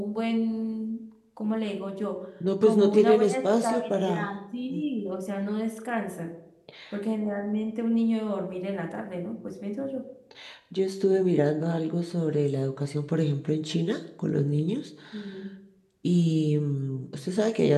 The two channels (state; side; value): identical; both; correlation 1.00